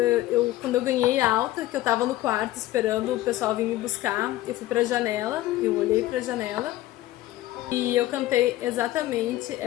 quando eu ganhei alta, que eu tava no quarto esperando o pessoal vir me buscar, eu fui pra janela, eu olhei pra janela e eu cantei exatamente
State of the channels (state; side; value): quieter; right; 15.7 dB